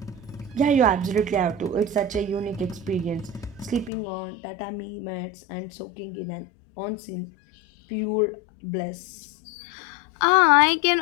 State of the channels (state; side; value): drops out; right; at 3.9 s